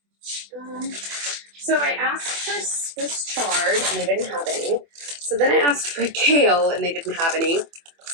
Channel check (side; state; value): left; late; 24 ms